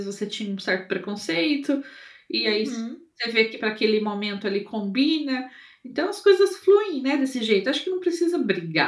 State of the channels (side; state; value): both; identical; correlation 1.00